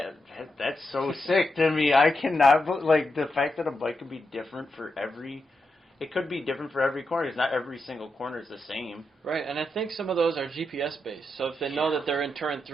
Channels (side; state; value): both; normal; correlation 0.85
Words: so sick to me. I cannot, like, the fact that a bike could be different for every corner. It's not every single corner is the same. Right, and I think some of those are GPS based. So if they know that they're in turn